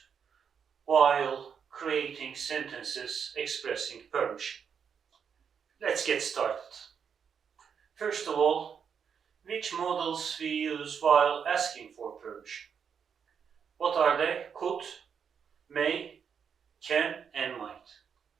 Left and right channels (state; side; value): quieter; left; 7.0 dB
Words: while creating sentences expressing permission? Let's get started. First of all, which modals we use while asking for permission? What are they? Could, may, can, and might.